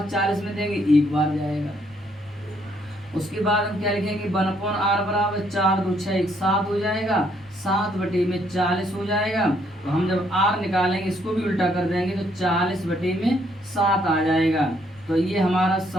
40 में देंगे 1 बार जाएगा। उसके बाद हम क्या लिखेंगे, 1/r बराबर 4 2 6 1 7 हो जाएगा, 7/40 हो जाएगा। तो हम जब r निकालेंगे इसको भी उल्टा कर देंगे तो 40/7 आ जाएगा। तो ये हमारा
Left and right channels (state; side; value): noise; left; rumble, 28 dB below the sound